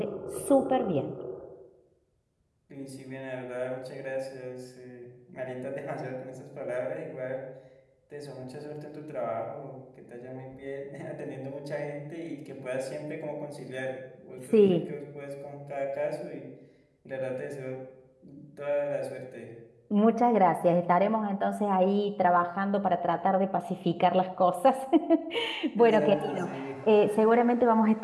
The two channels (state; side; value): identical; both; correlation 1.00